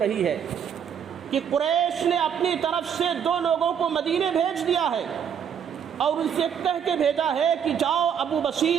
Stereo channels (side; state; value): left; quieter; 8.1 dB